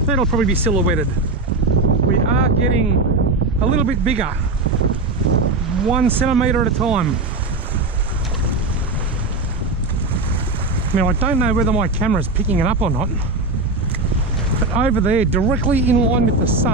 that'll probably be silhouetted. We are getting a little bit bigger, 1 centimetre at a time. Now I don't know whether my camera's picking it up or not, but over there, directly in line with the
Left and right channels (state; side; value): quieter; left; 3.2 dB